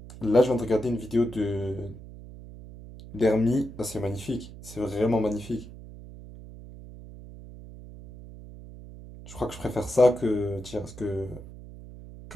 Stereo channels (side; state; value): right; noise; hum, 15 dB below the sound